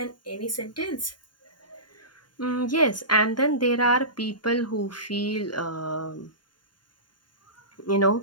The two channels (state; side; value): late; right; 0.71 ms